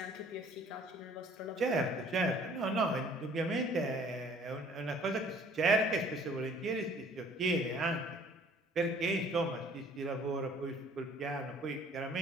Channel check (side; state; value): both; normal; correlation 0.55